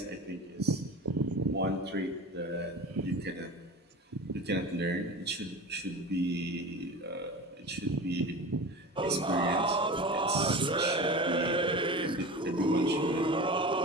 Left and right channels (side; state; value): both; normal; correlation 0.32